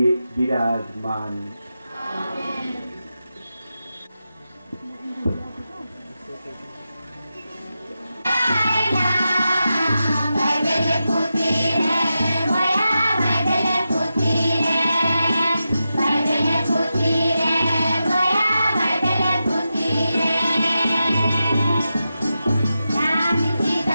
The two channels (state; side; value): inverted; both; correlation -0.90